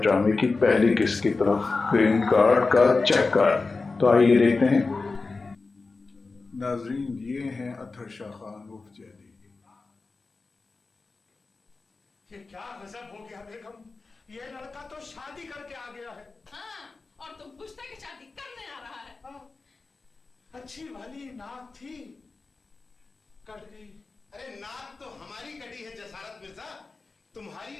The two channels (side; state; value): right; quieter; 3.9 dB